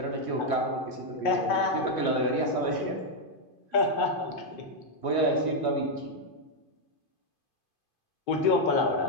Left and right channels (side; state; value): right; late; 2.5 ms